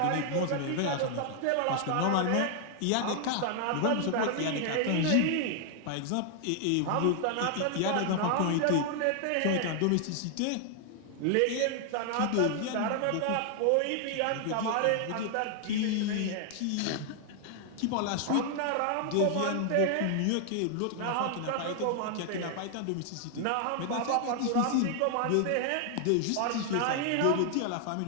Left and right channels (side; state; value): both; different; correlation 0.00